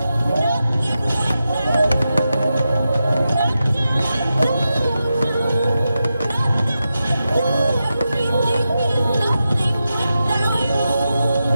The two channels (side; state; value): both; inverted; correlation -0.90